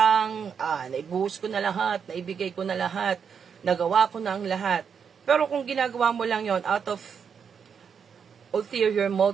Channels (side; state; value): left; quieter; 6.9 dB